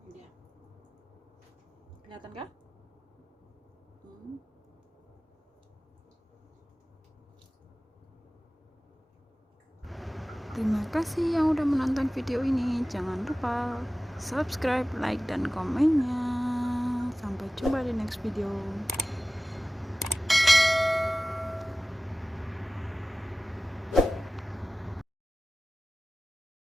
Dia. Kelihatan kah? Terima kasih yang udah menonton video ini. Jangan lupa subscribe, like, dan komennya. Sampai jumpa di next video.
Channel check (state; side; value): normal; both; correlation 0.97